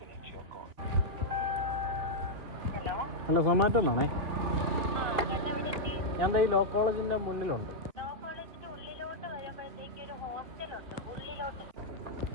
ഹലോ, സൊമാറ്റോ എന്നാണേ. ഞാൻ ഈ ലോ കോളേജിന്റെ മുന്നിലുണ്ട്.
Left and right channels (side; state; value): left; late; 2.9 ms